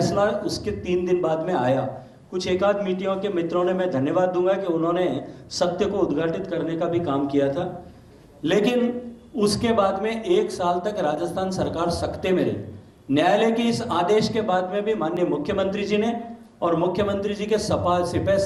उसके 3 दिन बाद में आया। कुछ एकाध मीडिया के मित्रों ने, मैं धन्यवाद दूंगा कि उन्होंने सत्य को उद्घाटित करने का भी काम किया था, लेकिन उसके बाद में 1 साल तक राजस्थान सरकार सकते में रही। न्यायालय के इस आदेश के बाद में भी माननीय मुख्यमंत्री जी ने और मुख्यमंत्री जी के सिपह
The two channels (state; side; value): identical; both; correlation 1.00